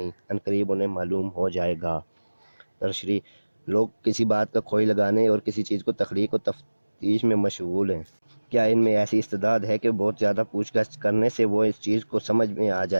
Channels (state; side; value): inverted; both; correlation -1.00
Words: عنقریب انہیں معلوم ہو جائے گا۔ تشریح، لوگ کسی بات کا کھوئی لگانے اور کسی چیز کو تخلیق و تفتیش میں مشغول ہیں۔ کیا ان میں ایسی استعداد ہے کہ بہت زیادہ پوچھ گچھ کرنے سے وہ اس چیز کو سمجھ میں آ